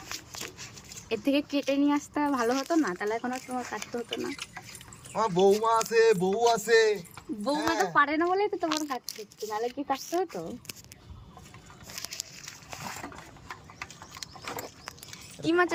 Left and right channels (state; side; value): identical; both; correlation 1.00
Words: এর থেকে কেটে নিয়ে আসতে ভালো হতো না, তাহলে এখন আর তোমার কাটতে হতো না। আমার বৌমা আছে, বউ আছে। বৌমা তো পারে না বলেই তো তোমার কাটতে হচ্ছে, নাহলে কি কাটতে হতো? কি মাছ